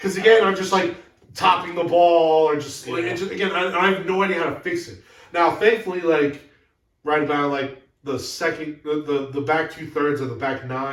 again, I'm just like topping the ball, or just, like, again, I have no idea how to fix it. Now, thankfully, like right about like the second, the back 2/3 of the back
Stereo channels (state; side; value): identical; both; correlation 1.00